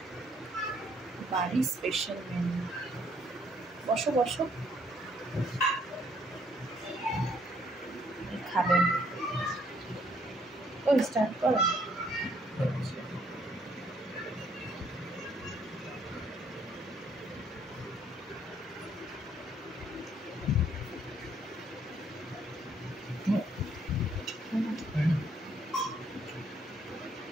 বাড়ির স্পেশাল মেনু। বসো বসো, খাবেন। ওই স্টার্ট করো।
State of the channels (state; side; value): normal; both; correlation 0.67